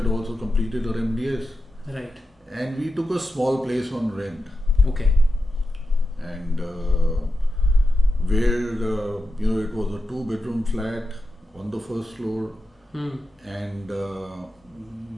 also completed her MDS, Right. and we took a small place on rent, Okay. and where it was a 2-bedroom flat on the first floor, and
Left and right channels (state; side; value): normal; both; correlation 0.90